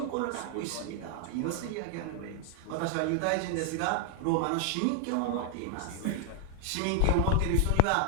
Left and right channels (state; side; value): different; both; correlation 0.00